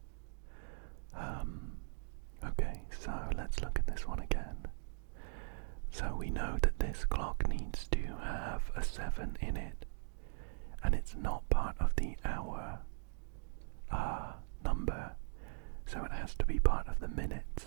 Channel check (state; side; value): silent; left; digital silence